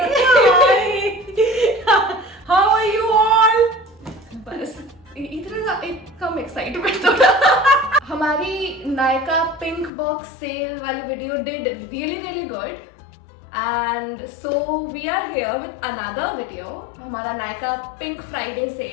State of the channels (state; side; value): drops out; right; at 9.9 s